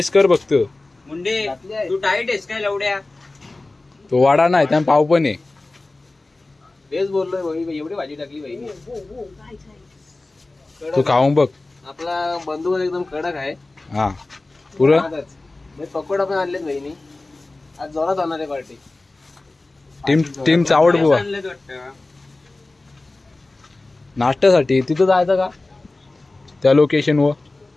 कर बघतो. मुंडे तू डाईट आहेस काय लवड्या? तो वाडा नाही त्या पाव पण आहे. तेच बोललोय भाई, एवढी भाजी टाकली भाई. तू खाऊन बघ. आपला बंधू एकदम कडक आहे. हा पुरं पकोडा पण आणलेत बहिणी. आज जोरात होणार आहे पार्टी. टीम चावड बुवा. नाश्त्यासाठी तिथं जायचं का त्या लोकेशन वर?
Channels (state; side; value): quieter; right; 3.1 dB